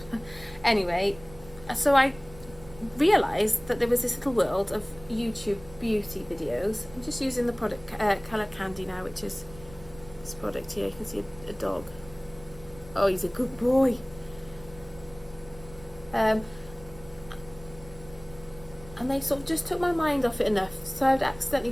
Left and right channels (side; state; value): right; noise; rumble, 20 dB below the sound